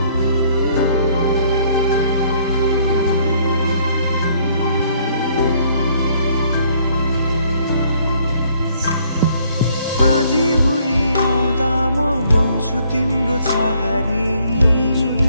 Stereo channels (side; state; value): both; inverted; correlation -0.64